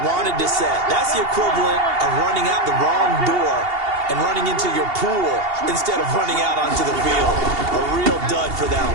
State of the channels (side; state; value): left; late; 2.8 ms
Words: wanted to set. That's the equivalent of running out the wrong door and running into your pool instead of running out onto the field. A real dud for that one.